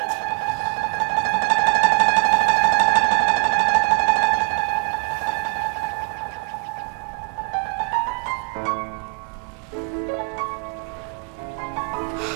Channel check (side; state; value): left; quieter; 32.4 dB